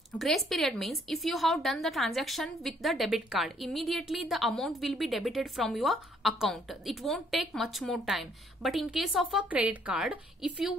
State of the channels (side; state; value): both; normal; correlation 0.65